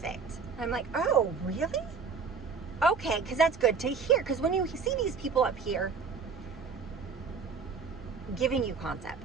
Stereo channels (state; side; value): quieter; left; 5.4 dB